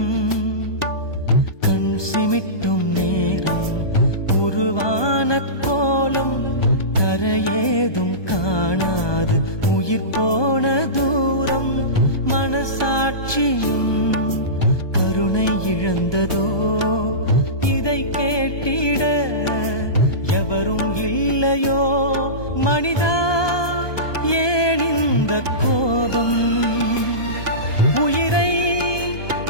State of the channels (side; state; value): right; late; 1.2 ms